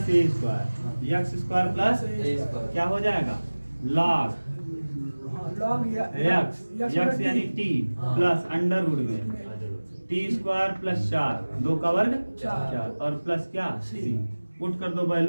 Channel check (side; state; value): both; inverted; correlation -1.00